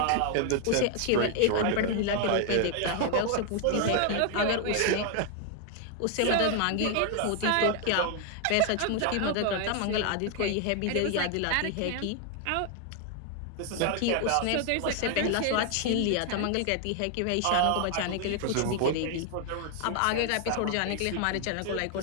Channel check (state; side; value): different; both; correlation 0.00